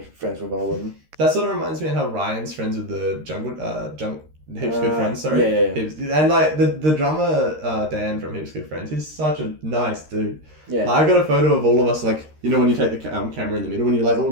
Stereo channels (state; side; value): late; left; 13 ms